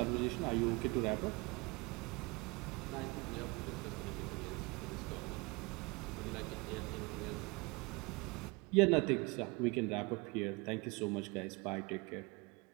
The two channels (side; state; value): left; quieter; 26.2 dB